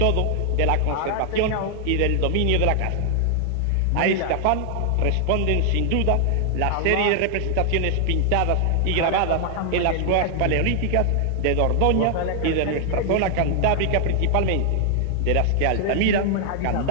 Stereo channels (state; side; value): different; both; correlation 0.00